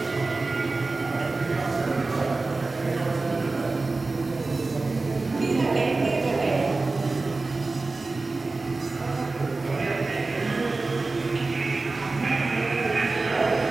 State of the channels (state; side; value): quieter; left; 3.5 dB